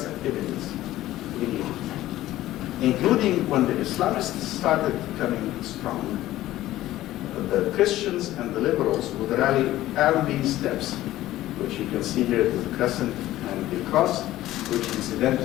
activities in Egypt, including when the Islamists started becoming strong. The Christians and the liberals would rally around these steps, which you can see here is the crescent and the cross, which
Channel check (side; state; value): right; quieter; 15.1 dB